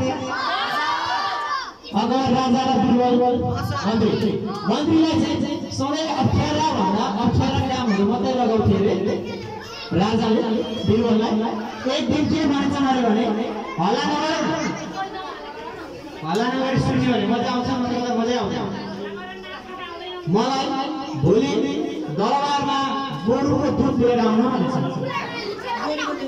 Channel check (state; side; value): identical; both; correlation 1.00